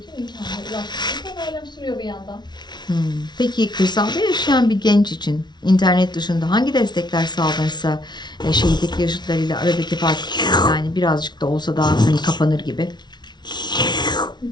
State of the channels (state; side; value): late; right; 0.20 ms